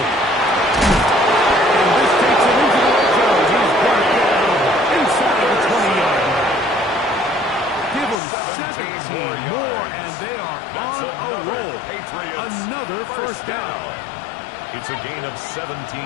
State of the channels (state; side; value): drops out; right; at 8.2 s